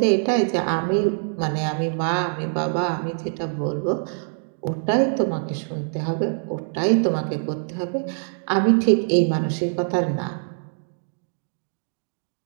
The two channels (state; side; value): silent; left; digital silence